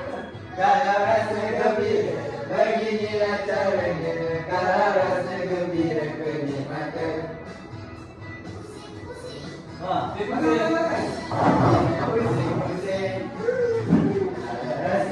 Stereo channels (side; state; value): both; identical; correlation 1.00